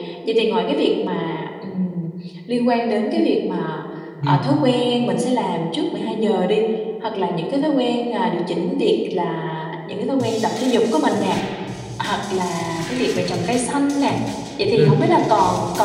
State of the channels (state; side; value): identical; both; correlation 1.00